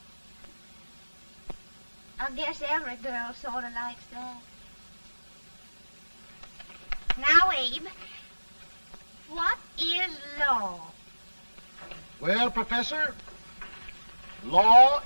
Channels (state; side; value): inverted; both; correlation -1.00